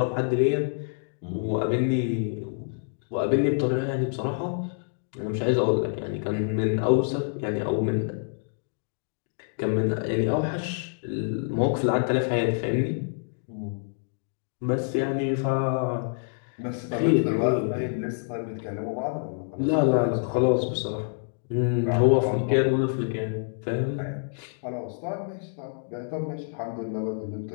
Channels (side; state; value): right; silent; digital silence